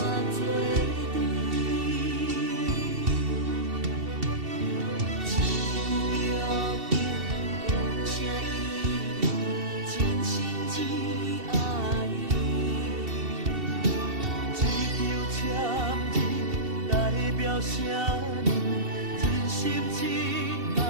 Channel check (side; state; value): left; late; 2.7 ms